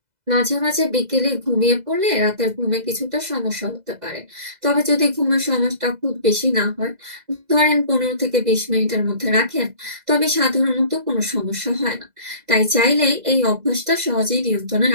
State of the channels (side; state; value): left; late; 2.0 ms